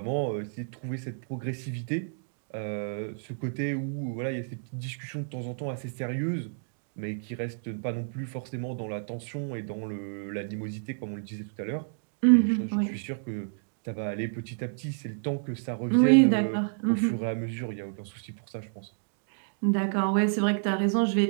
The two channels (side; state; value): left; silent; digital silence